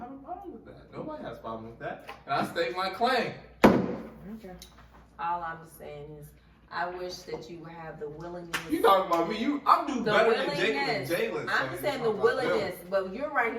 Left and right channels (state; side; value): identical; both; correlation 1.00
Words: a problem with that. Nobody has a problem with that. And I state my claim. Okay. All I'm saying is, I wish that you have the willingness. You talking about me? I'm doing better than Jalen. I'm just saying the willingness, but you're right